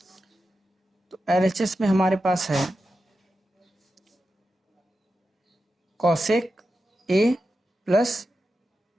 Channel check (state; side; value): normal; both; correlation 0.90